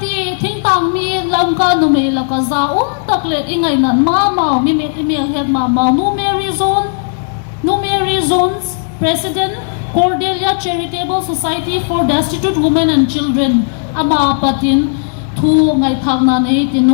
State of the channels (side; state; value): right; silent; digital silence